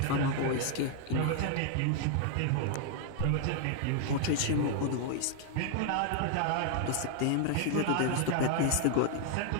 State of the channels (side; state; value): both; different; correlation 0.00